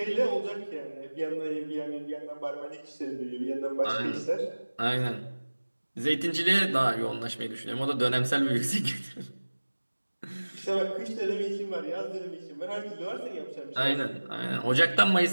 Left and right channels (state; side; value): inverted; both; correlation -1.00